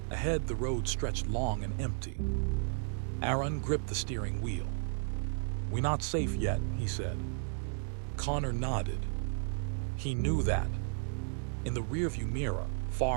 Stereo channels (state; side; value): silent; left; digital silence